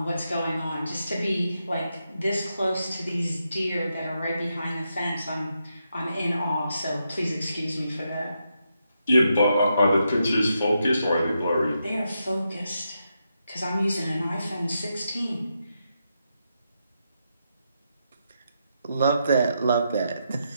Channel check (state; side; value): inverted; both; correlation -0.83